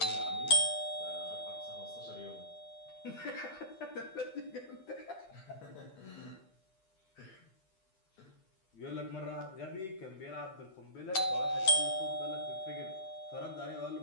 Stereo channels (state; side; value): late; right; 10 ms